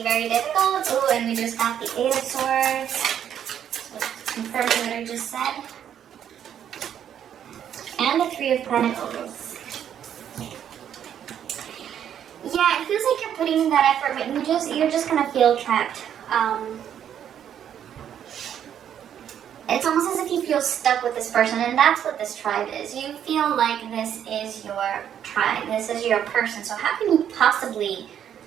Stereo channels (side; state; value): left; quieter; 9.5 dB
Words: very difficult. Oh, and we just got the Eight of Swords. So confirming what I just said. And the Three of Pentacles. Yeah, it feels like you're putting in that effort, but you're just gonna feel trapped. It's almost as if you feel stuck with this person, and that's what this tribe is. You feel like this is your tribe, this is your person. So how can you possibly